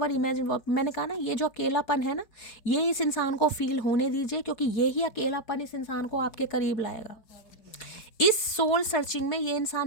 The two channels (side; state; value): right; late; 4.6 ms